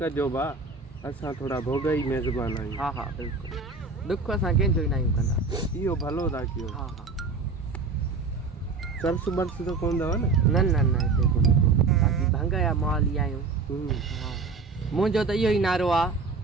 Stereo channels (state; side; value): quieter; left; 4.2 dB